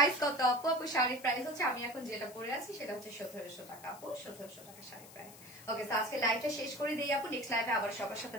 কত আপু? আপু শাড়ির প্রাইস হচ্ছে, আমি এখন যেটা পরে আছি সেটা হচ্ছে 1700 টাকা আপু, 1700 টাকা শাড়ির প্রাইস। ওকে, তো আজকে লাইভটা শেষ করে দিই আপু, নেক্সট লাইভে আবার সবার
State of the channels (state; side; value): noise; left; hiss, 19 dB below the sound